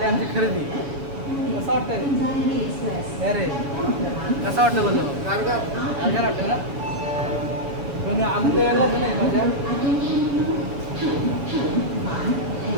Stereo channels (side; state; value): left; late; 7.2 ms